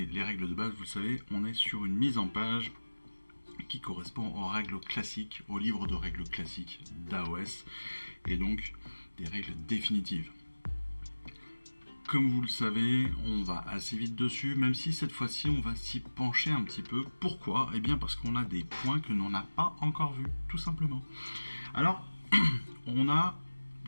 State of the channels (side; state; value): both; inverted; correlation -1.00